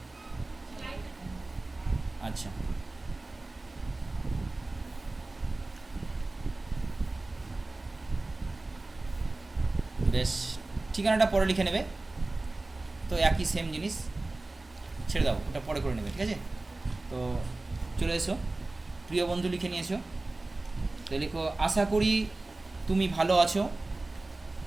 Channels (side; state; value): left; quieter; 3.0 dB